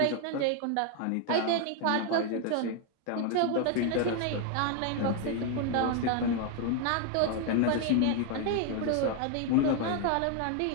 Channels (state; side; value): different; both; correlation 0.01